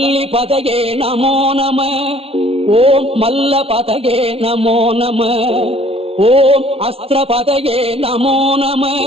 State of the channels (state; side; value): late; left; 0.28 ms